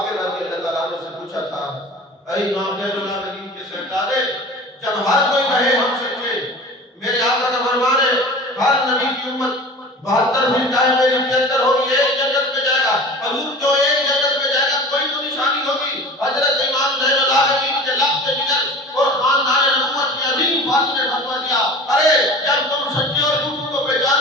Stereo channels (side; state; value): both; normal; correlation 0.38